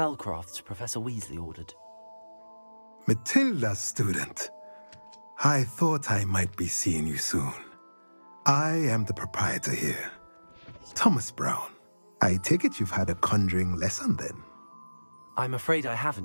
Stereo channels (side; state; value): both; inverted; correlation -1.00